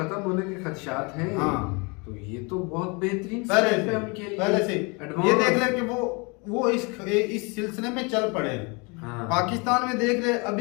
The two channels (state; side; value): quieter; right; 29.8 dB